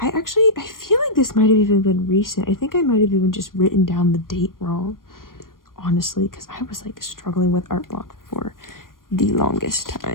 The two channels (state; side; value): late; right; 0.91 ms